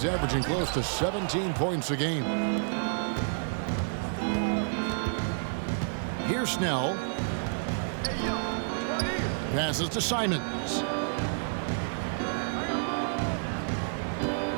averaging close to 17 points a game. Here's Snell. Passes to Simons.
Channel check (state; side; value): silent; left; 58 dB below the other